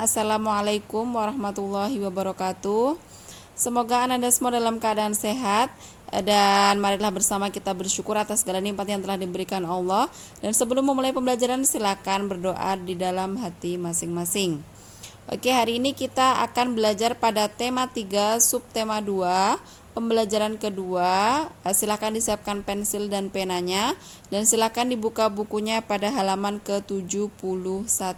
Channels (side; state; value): both; identical; correlation 1.00